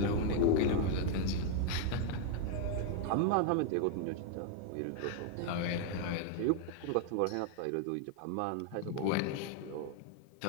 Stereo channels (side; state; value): both; different; correlation 0.00